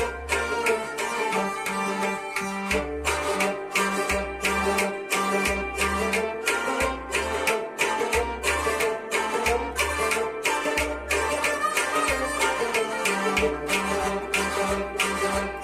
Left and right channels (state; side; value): identical; both; correlation 1.00